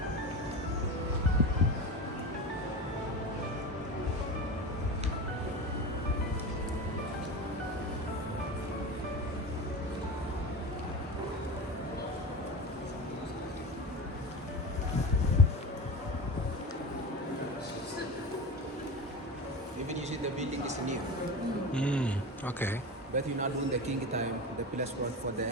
Even you see the building is new. Okay. But you know, during the king time, the palace was for the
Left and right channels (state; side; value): normal; both; correlation 0.28